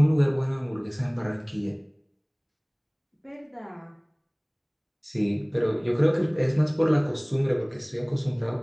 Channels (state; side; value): identical; both; correlation 1.00